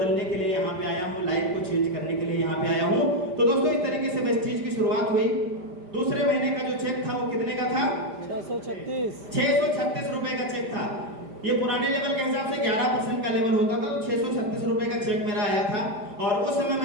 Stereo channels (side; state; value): left; late; 5.0 ms